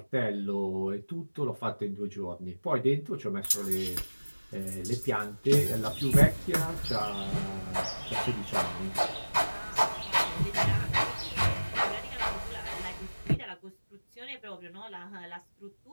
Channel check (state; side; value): inverted; both; correlation -1.00